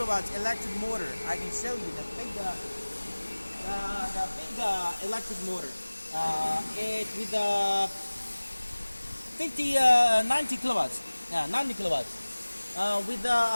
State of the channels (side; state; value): both; inverted; correlation -1.00